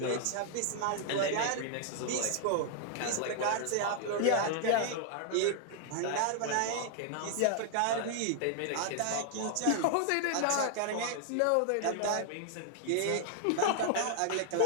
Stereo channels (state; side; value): different; both; correlation -0.01